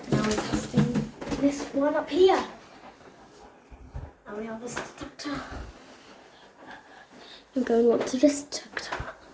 Now we're testing this one up here. Now we have this detector. I'm going on to this detector.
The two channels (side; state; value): both; identical; correlation 1.00